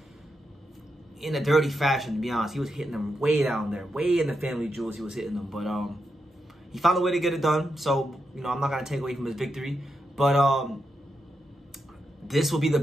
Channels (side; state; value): both; normal; correlation 0.85